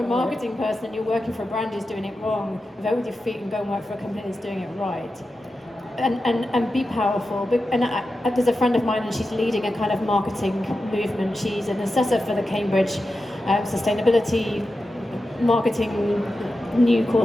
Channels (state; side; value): normal; both; correlation 0.91